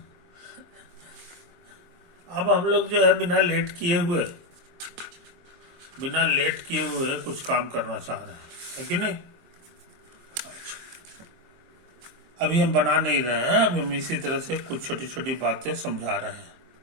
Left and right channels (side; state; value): left; late; 23 ms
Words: अब हम लोग जो है बिना लेट किए हुए कुछ काम करना चाह रहे हैं, है कि नहीं? अभी हम बना नहीं रहे हैं, अभी हम इसी तरह से कुछ छोटी छोटी बातें समझा रहे हैं।